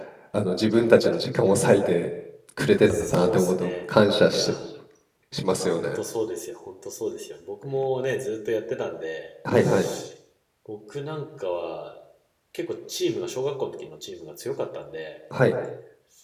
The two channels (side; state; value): both; identical; correlation 1.00